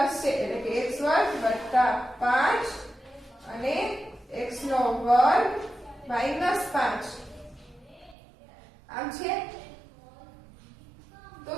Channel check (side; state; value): left; drops out; at 8.2 s